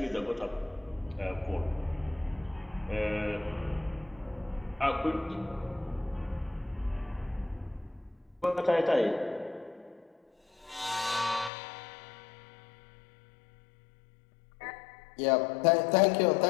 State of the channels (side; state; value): right; drops out; at 11.5 s